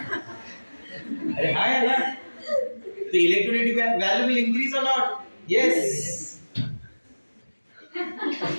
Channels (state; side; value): inverted; both; correlation -1.00